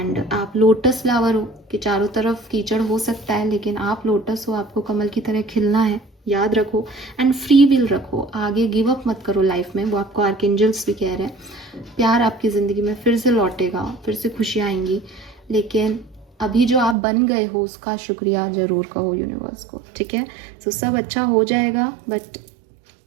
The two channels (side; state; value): left; drops out; at 16.9 s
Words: आप लोटस फ्लावर हो कि चारों तरफ कीचड़ हो सकता है लेकिन आप लोटस हो, आपको कमल की तरह खिलना है, याद रखो। एंड फ्री विल रखो, आगे गिव अप मत करो लाइफ में, वो आपको आर्कएंजल्स भी कह रहे हैं। प्यार आपकी ज़िंदगी में फिर से लौटेगा, फिर से खुशियाँ आएंगी, लेकिन अभी जो आप बन गए हो उसका शुक्रिया ज़रूर कहो यूनिवर्स को, ठीक है। सो सब अच्छा हो जाएगा, बट